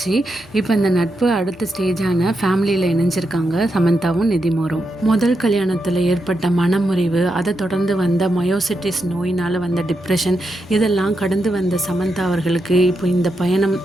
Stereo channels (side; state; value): both; normal; correlation 0.85